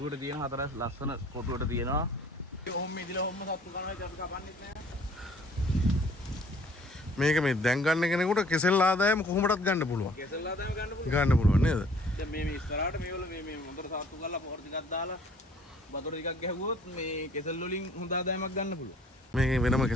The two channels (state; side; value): normal; both; correlation 0.55